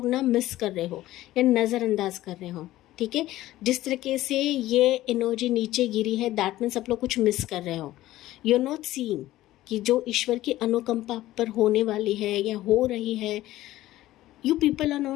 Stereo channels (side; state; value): right; quieter; 15.5 dB